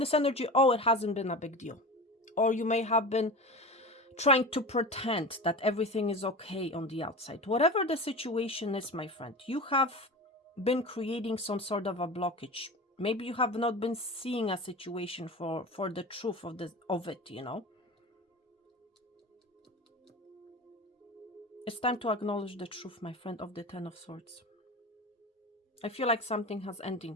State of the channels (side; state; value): both; normal; correlation 0.30